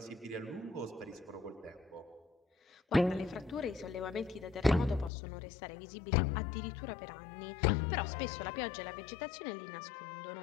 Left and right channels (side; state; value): right; drops out; at 5.1 s